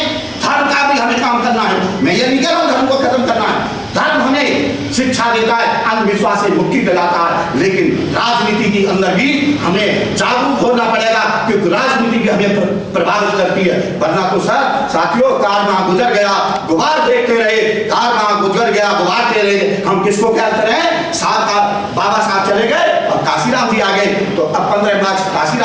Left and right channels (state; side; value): identical; both; correlation 1.00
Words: धर्म का भी हमें काम करना है। मैं ये नहीं कह रहा हूँ धर्म को खत्म करना है, धर्म हमें शिक्षा देता है, अंधविश्वास से मुक्ति दिलाता है, लेकिन राजनीति के अंदर भी हमें जागरूक होना पड़ेगा, क्योंकि राजनीति हमें प्रभावित करती है। वरना तो सर साथियों, कार वहां गुजर गया, गुबार देखते रहे, कार वहां गुजर गया, गुबार दे रहे, हम किसको क्या करें? साहब का बाबा साहब चले गए और काशीराम जी आ गए। गए तो अब 15 मार्च